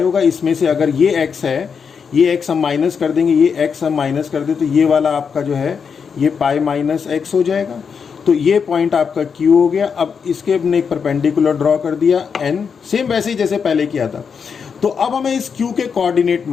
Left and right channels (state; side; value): quieter; right; 6.3 dB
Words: होगा, इसमें से अगर ये x है, ये x हम माइनस कर देंगे, ये x हम माइनस कर दे, तो ये वाला आपका जो है ये पाई माइनस एक्स हो जाएगा। तो ये पॉइंट आपका Q हो गया। अब इसके हमने एक परपेंडिकुलर ड्रॉ कर दिया N, सेम वैसे ही जैसे पहले किया था। तो अब हमें इस Q के कोऑर्डिनेट